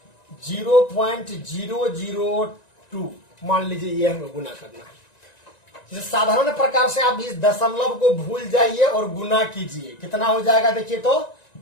0.002, मान लीजिए ये हमें गुना करना है। जैसे साधारण प्रकार से आप इस दशमलव को भूल जाइए और गुना कीजिए, कितना हो जाएगा देखिए तो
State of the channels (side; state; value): right; late; 1.9 ms